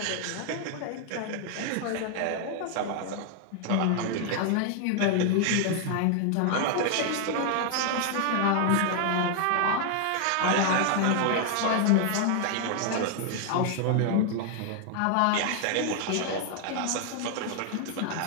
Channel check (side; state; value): both; different; correlation 0.00